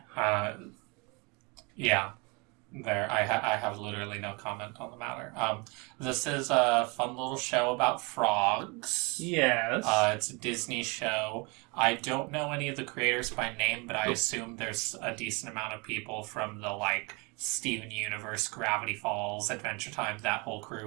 Yeah. I have literally no comment on the matter. This is a fun little show about frogs. Yes. It's a Disney show. I don't know any of the creators by name, but I assume there's a decent amount of people from the, Steven Universe, Gravity Falls, Adventure Time, that whole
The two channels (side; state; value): left; quieter; 29.2 dB